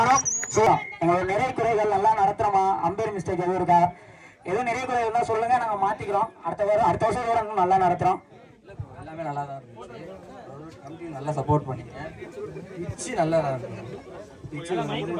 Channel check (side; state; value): both; identical; correlation 1.00